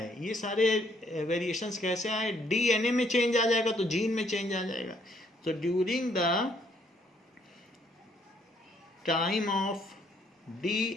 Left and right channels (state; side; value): normal; both; correlation 0.67